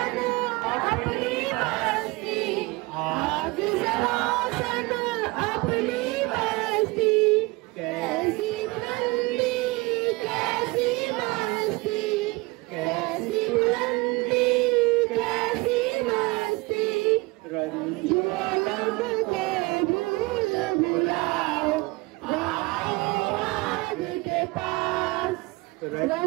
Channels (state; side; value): quieter; left; 24.0 dB